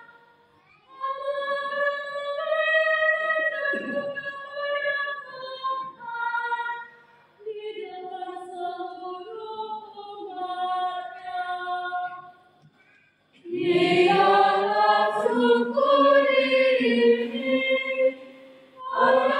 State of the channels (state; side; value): identical; both; correlation 1.00